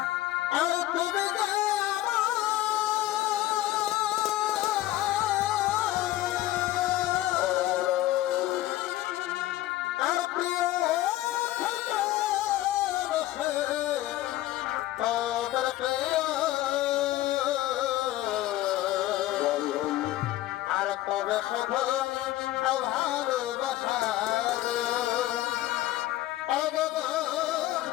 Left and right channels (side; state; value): right; quieter; 15.2 dB